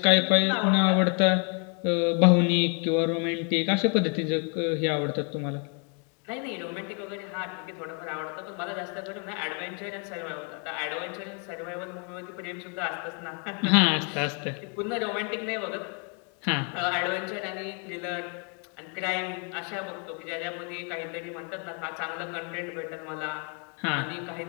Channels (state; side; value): quieter; right; 38.5 dB